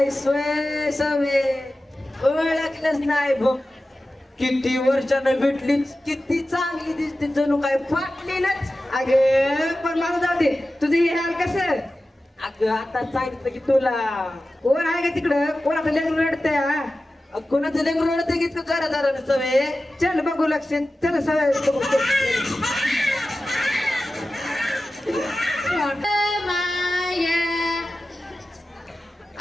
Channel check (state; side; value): normal; both; correlation 0.94